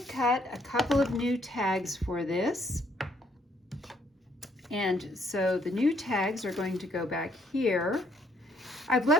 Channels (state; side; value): normal; both; correlation 0.68